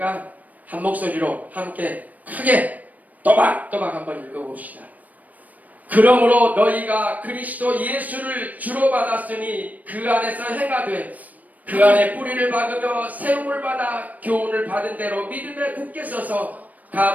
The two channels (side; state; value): left; late; 0.076 ms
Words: 한 목소리로 함께 크게 또박또박 한번 읽어봅시다. 그러므로 너희가 그리스도 예수를 주로 받았으니 그 안에서 행하되 그 안에 뿌리를 박으며 세움을 받아 교훈을 받은 대로 믿음에 굳게 서서